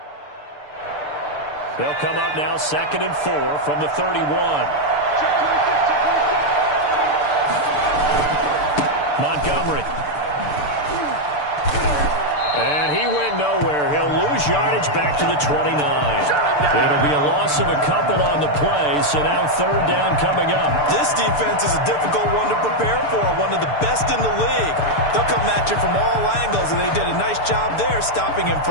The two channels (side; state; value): right; late; 6.8 ms